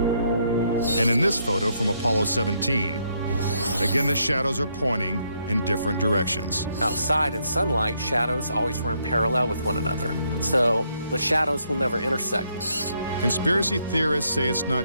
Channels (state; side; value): inverted; both; correlation -0.74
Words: And in this photo from Apollo 17, again the shadows are pointing in different directions. Outside in sunlight, shadows always run parallel with one another. So the shadows will never intersect. Conspiracy theorists say it's